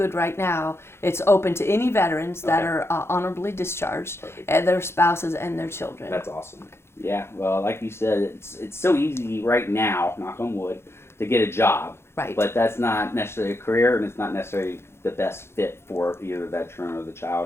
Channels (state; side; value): late; right; 0.12 ms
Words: right now, it's open to any veterans that are honorably discharged, and their spouses and their children. That's awesome. Yeah, well, like you said, it's so easy right now, knock on wood, to get a job. Right. But that's not necessarily a career, and it's not necessarily the best fit for either the veteran or the